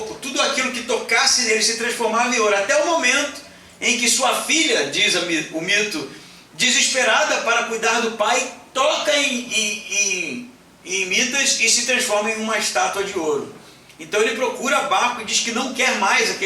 tudo aquilo que tocasse nele se transformava em ouro. Até o momento em que sua filha, diz o mito, desesperada para cuidar do pai, toca em Midas e se transforma em uma estátua de ouro. Então ele procura Baco e diz que não quer mais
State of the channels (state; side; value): identical; both; correlation 1.00